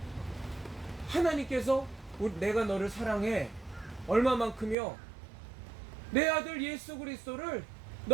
하나님께서 내가 너를 사랑해 얼마만큼요? 내 아들 예수 그리스도를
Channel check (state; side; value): drops out; left; at 4.8 s